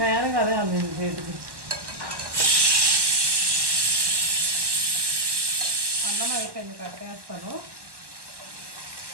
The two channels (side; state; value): left; late; 1.2 ms